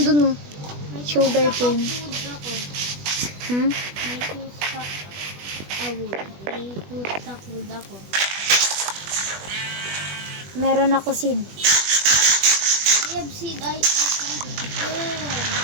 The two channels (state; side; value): late; left; 20 ms